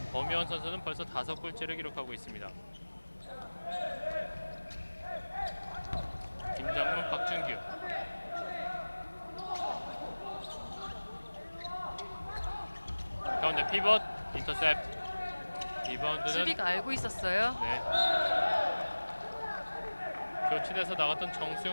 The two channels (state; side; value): inverted; both; correlation -1.00